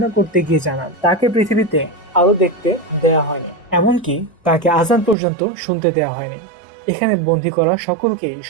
করতে গিয়ে জানান, তাকে পৃথিবীতে আলো দেখতে দেয়া হয়নি, এমনকি তাকে আজান পর্যন্ত শুনতে দেওয়া হয়নি। এখানে বন্দী করা সকলকেই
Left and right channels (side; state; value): left; drops out; at 5.2 s